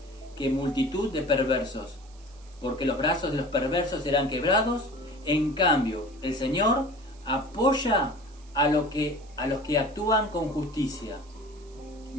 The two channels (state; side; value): noise; right; hiss, 27 dB below the sound